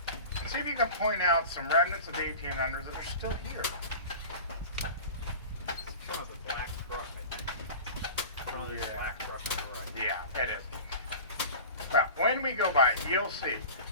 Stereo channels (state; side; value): inverted; both; correlation -0.35